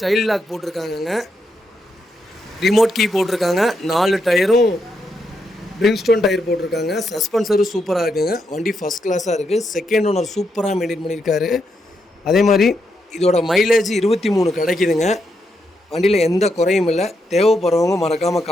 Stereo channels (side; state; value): both; normal; correlation 0.81